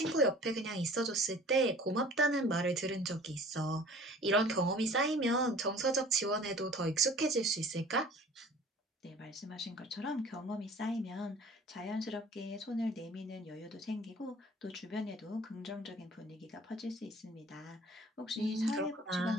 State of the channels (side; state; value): both; normal; correlation 0.47